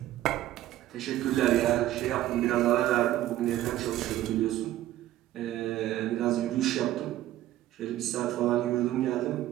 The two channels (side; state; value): left; quieter; 14.1 dB